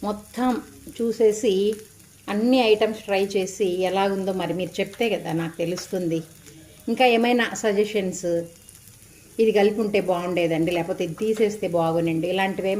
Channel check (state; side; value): identical; both; correlation 1.00